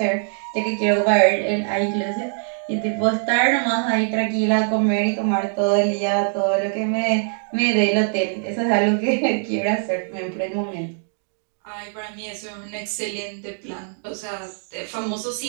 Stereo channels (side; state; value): left; silent; 64 dB below the other